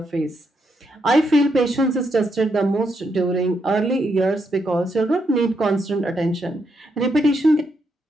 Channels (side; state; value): both; normal; correlation 0.80